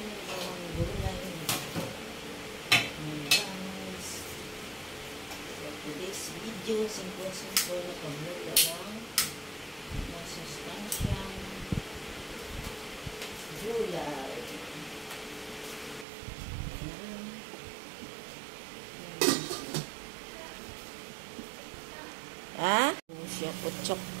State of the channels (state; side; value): drops out; left; at 16.1 s